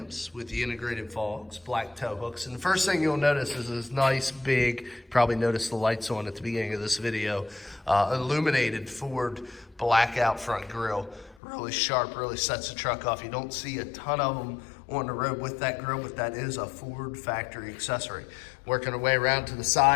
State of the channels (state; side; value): drops out; right; at 11.4 s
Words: with the integrated fogs, black tow hooks. And the first thing you'll notice is this nice big, probably noticed the lights on at the beginning of this video, illuminated Ford blackout front grille. Really sharp, really sets the truck off. You don't see a ton of them on the road with that grille, but that is a Ford factory accessory. Working our way around to the